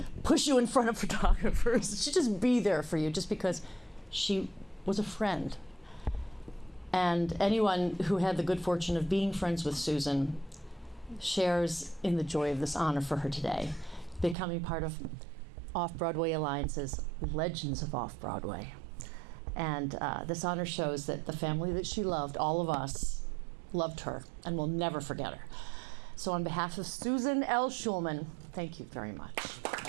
push you in front of photographers. She'd just be there for you just because she was a friend. And anyone who had the good fortune of being friends with Susan shares in the joy of this honor for her today, becoming part of Off-Broadway Alliance's Legends of Off-Broadway. And this honor shows that the family that she loved, all of us, loved her and will never forget her. So on behalf of Susan L. Schulman, thank you very much.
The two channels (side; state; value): left; drops out; at 14.4 s